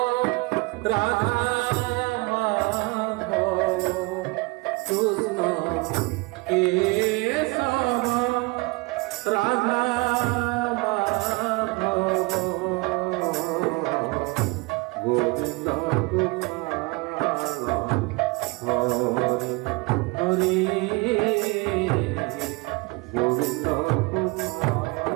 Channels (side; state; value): left; quieter; 25.8 dB